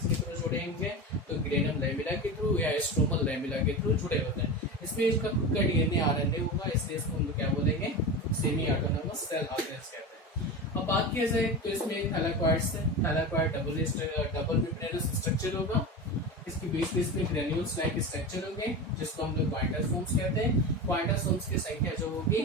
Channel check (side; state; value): both; normal; correlation 0.25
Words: थ्रू जुड़े होंगे? तो ग्रेनम लैमेला के थ्रू या स्ट्रोमल लैमेला के थ्रू जुड़े होते हैं। इसमें इसका खुद का डीएनए आरएनए होगा, इसलिए इसको हम लोग क्या बोलेंगे? सेमी ऑटोनॉमस सेल ऑर्गेनेल्स कहते हैं। अब बात किया जाए तो इसमें थैलाकॉइड्स है। थैलाकॉइड डबल मेम्ब्रेनस स्ट्रक्चर होगा। इसके बीच में ग्रेन्यूल्स लाइक स्ट्रक्चर होंगे जिसको हम लोग क्वांटासोम्स कहते हैं। क्वांटासोम्स की संख्या जो होगी